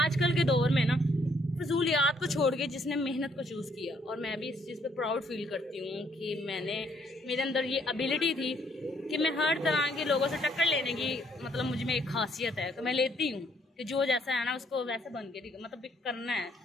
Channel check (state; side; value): normal; both; correlation 0.68